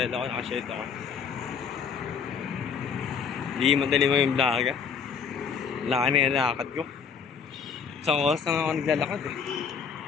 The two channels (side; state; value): right; quieter; 6.5 dB